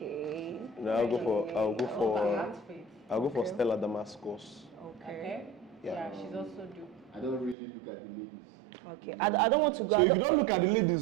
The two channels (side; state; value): left; drops out; at 7.6 s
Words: No, I'll go for Okay. Stella Damascus. Okay. Yeah. Yeah, she's also dope. I don't really look at the ladies. Okay. I don't want to go. So if you don't look at the